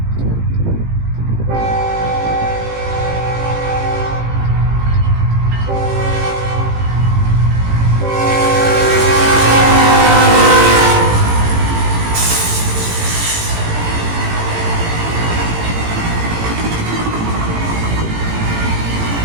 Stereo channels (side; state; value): left; late; 18 ms